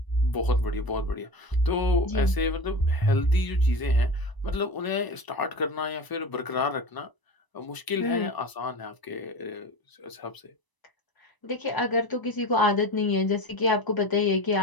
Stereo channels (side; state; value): right; late; 1.0 ms